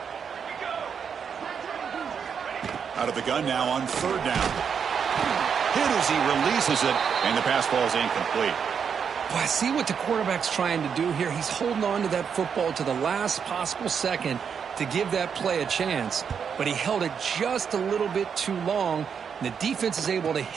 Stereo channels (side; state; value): left; quieter; 6.9 dB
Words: Out of the gun now on 3rd down. Hit as he releases it, and the pass ball is incomplete. Well, I see what the quarterback's trying to do here. He's holding on to that football to the last possible second to give that play a chance, but he held it just a little bit too long, And the defense is able to